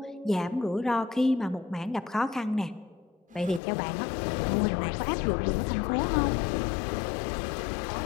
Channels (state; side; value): drops out; right; at 3.6 s